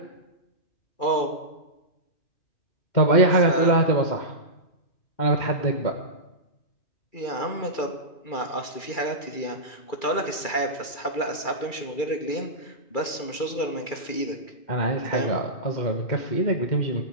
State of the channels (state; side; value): late; right; 2.3 ms